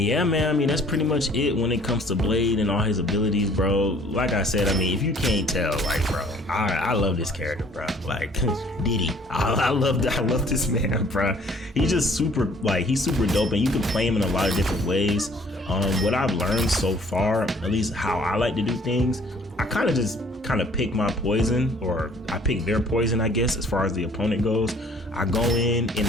yeah, man, I mean, that's pretty much it when it comes to Blade and all his abilities, bro. Like I said, I mean, if you can't tell, like, bro, I love this character, bro. Like, Diddy, I love this man, bro. He's just super, like, he's super dope, and you can play him in a lot of different ways. What I've learned so far, at least how I like to do things, I kind of pick my poison, or I pick their poison, I guess, as far as the opponent goes. I go in and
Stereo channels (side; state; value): both; normal; correlation 0.56